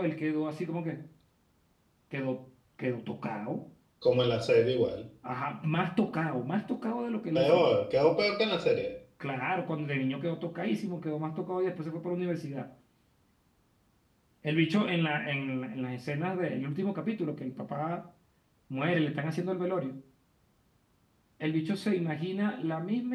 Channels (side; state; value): both; identical; correlation 1.00